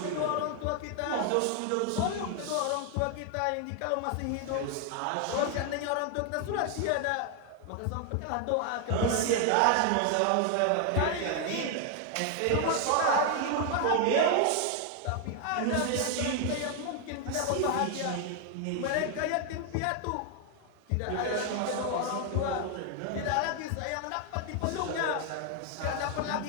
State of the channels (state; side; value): different; both; correlation 0.00